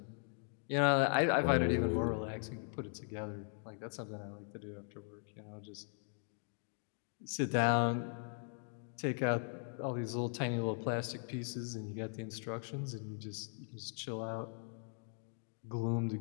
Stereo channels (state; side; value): silent; right; 52 dB below the other